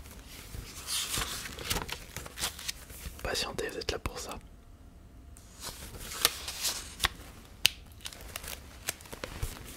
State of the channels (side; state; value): both; identical; correlation 1.00